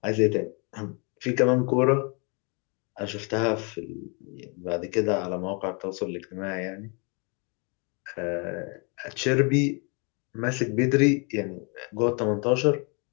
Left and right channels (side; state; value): right; quieter; 33.9 dB